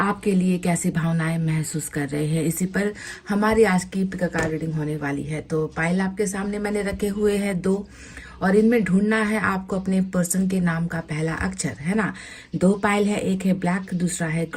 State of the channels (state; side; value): identical; both; correlation 1.00